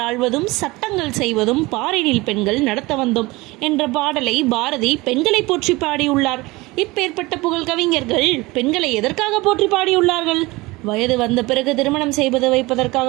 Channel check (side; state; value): left; quieter; 22.0 dB